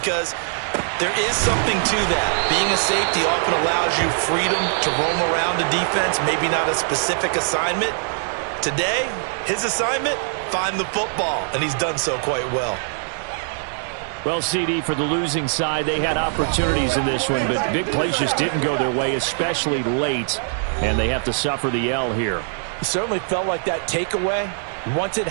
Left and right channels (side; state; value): left; silent; digital silence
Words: there is something to that. Being a safety often allows you freedom to roam around the defense, maybe not a specific assignment. Today, his assignment, find the football, and he's done so quite well. Well, CD, for the losing side, they had opportunities in this one, but big plays just didn't go their way, especially late, and they have to suffer the L here. It certainly felt like that takeaway, once it